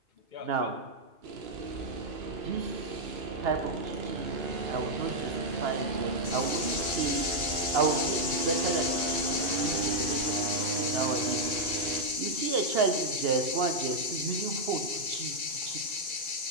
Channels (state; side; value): late; left; 2.3 ms